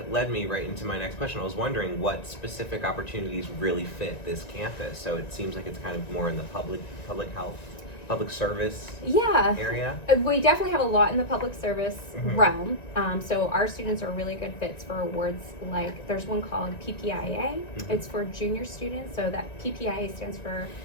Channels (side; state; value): right; late; 1.9 ms